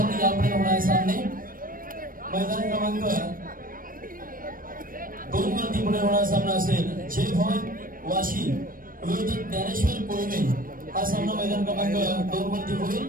यापुढे होणारे सामने मैदान क्रमांक 2 वरती पुढे होणारा सामना असेल जय भवन वाशी विरुद्ध ज्ञानेश्वर कोळमे. हा सामना मैदान क्रमांक 2 वरती होईल.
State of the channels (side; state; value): left; late; 0.41 ms